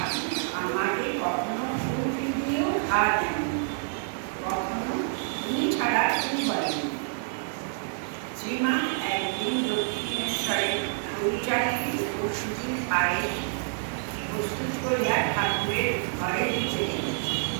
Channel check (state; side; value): silent; left; digital silence